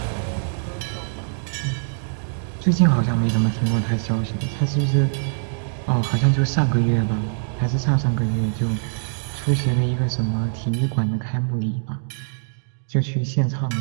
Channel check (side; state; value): left; silent; digital silence